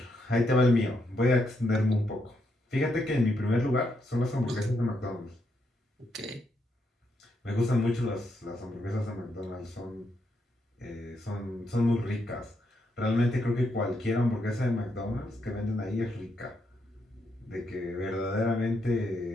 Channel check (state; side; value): normal; both; correlation 0.79